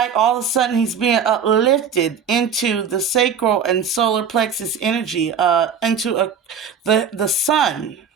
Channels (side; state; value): left; quieter; 6.7 dB